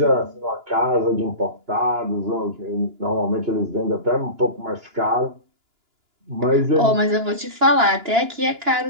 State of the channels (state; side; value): late; left; 2.9 ms